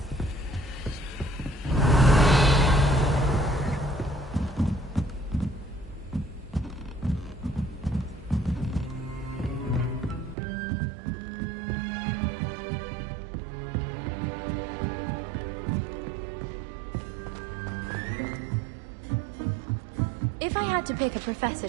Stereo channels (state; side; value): drops out; left; at 10.4 s